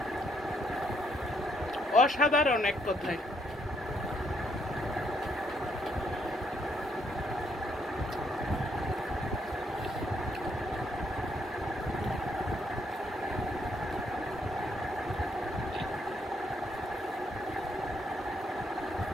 অসাধারণ এক কথায়।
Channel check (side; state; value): both; normal; correlation 0.72